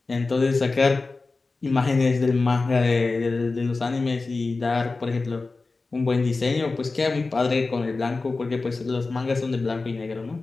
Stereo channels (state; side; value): quieter; right; 3.7 dB